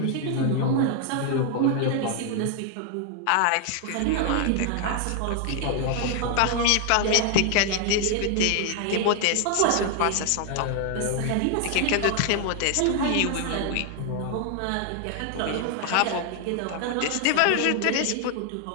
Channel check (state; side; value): different; both; correlation 0.00